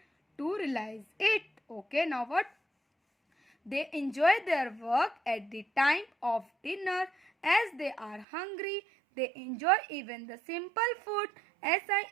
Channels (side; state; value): left; drops out; at 8.2 s